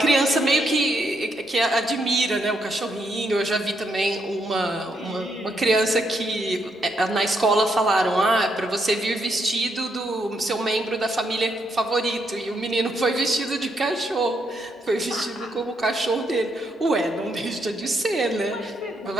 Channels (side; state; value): both; normal; correlation 0.77